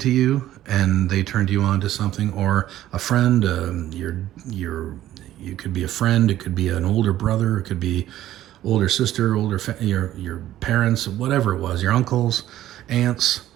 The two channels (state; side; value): quieter; left; 13.4 dB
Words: to you and they turned you on to something, or a friend. You could be a friend, it could be an older brother, it could be older sister, your parents, whatever it was, your uncles, aunts,